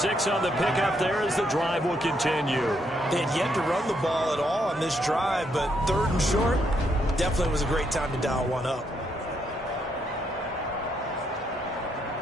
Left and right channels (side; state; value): both; normal; correlation 0.76